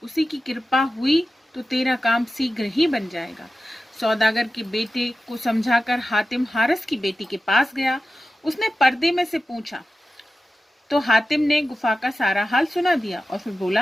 उसी की कृपा हुई तो तेरा काम शीघ्र ही बन जाएगा। सौदागर के बेटे को समझाकर हातिम हारिस की बेटी के पास गया। उसने पर्दे में से पूछा तो हातिम ने गुफा का सारा हाल सुना दिया और फिर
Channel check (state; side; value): normal; both; correlation 0.93